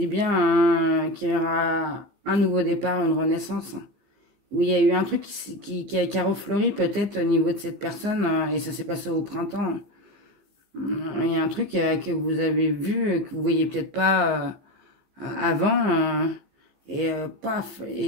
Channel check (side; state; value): left; late; 15 ms